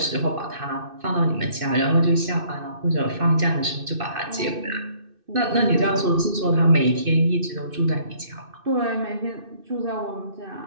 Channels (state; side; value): late; left; 2.6 ms